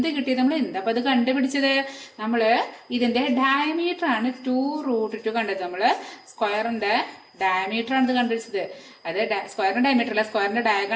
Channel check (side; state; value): both; identical; correlation 1.00